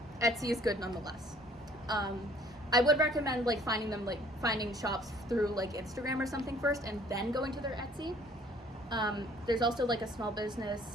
Etsy is good nonetheless. I would recommend like finding shops through like Instagram or something first, and then going to their Etsy. There's also like a small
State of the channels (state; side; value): normal; both; correlation 0.57